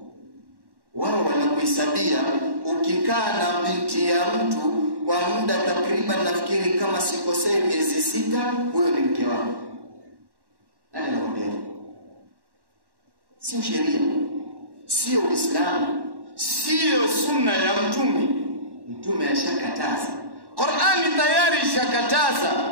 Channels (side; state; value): left; late; 1.1 ms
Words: Wao wanakuhesabia ukikaa na binti ya mtu kwa muda takriban, nafikiri kama sikosei, miezi 6, huyo ni mke wako. Nani anakuambia? Sio sheria, sio Uislamu, sio sunna ya Mtume. Mtume ashakataza, Qur'ani tayari